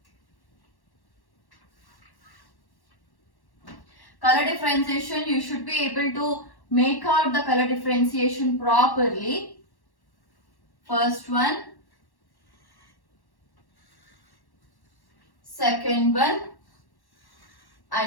Color differentiation, you should be able to make out the color differentiation properly. First one, second one,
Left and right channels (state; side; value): late; right; 1.1 ms